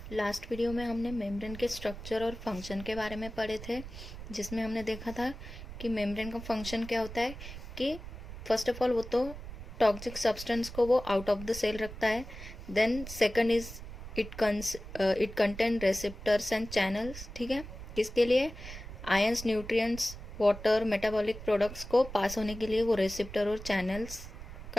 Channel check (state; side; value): noise; right; rumble, 12 dB below the sound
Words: लास्ट वीडियो में हमने मेम्ब्रेन के स्ट्रक्चर और फंक्शन के बारे में पढ़े थे, जिसमें हमने देखा था कि मेम्ब्रेन का फंक्शन क्या होता है कि फर्स्ट ऑफ ऑल वो तो टॉक्सिक सब्सटेंस को वो आउट ऑफ द सेल रखता है। Then second is it contain receptors and channels. ठीक है, किसके लिए? Ions, nutrients, water, metabolic products को पास होने के लिए वो रेसिप्टर और चैनल्स